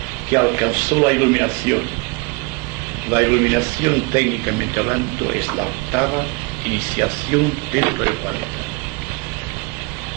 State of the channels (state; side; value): quieter; left; 27.3 dB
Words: que alcanzó la iluminación. La iluminación, técnicamente hablando, es la octava iniciación dentro del planeta.